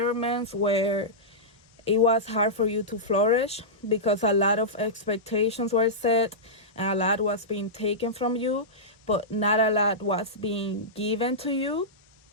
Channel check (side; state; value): both; normal; correlation -0.14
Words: where it was hard for you to flourish, because a lot of expectations were set and a lot was being taken from you, but not a lot was being given to you.